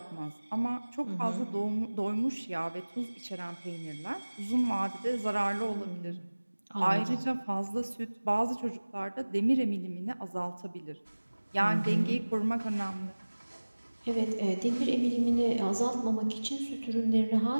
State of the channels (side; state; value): both; inverted; correlation -1.00